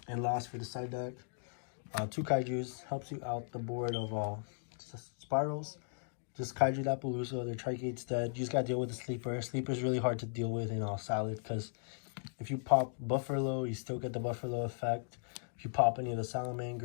And last, for the side deck, 2 Kaijus helps you out the board of Spirals. Just Kaiju that Palooza, their Trigate's dead. You just gotta deal with the Sleeper. Sleeper's really hard to deal with in Salad, because if you pop Buffalo, you still get the Buffalo effect. If you pop any of the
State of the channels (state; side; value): silent; right; digital silence